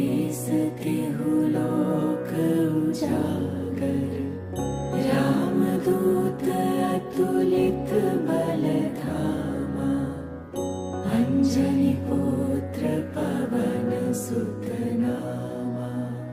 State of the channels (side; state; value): both; identical; correlation 1.00